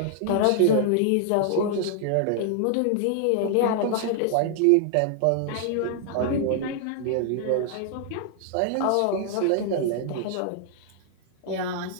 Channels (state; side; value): different; both; correlation 0.00